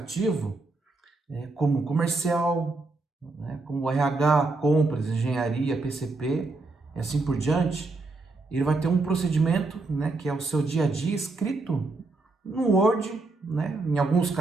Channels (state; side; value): quieter; left; 3.4 dB